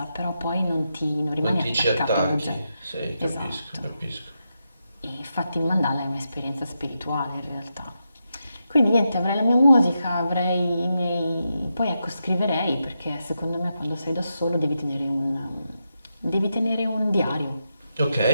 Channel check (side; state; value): both; inverted; correlation -0.86